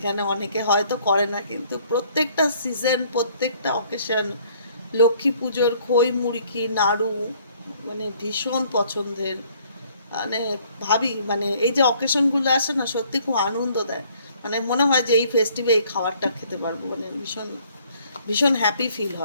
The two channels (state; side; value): inverted; both; correlation -0.61